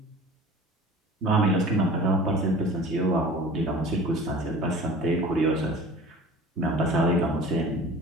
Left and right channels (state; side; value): normal; both; correlation 0.41